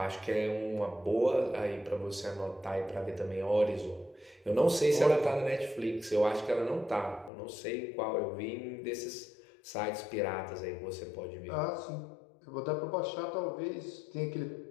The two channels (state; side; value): drops out; right; at 7.3 s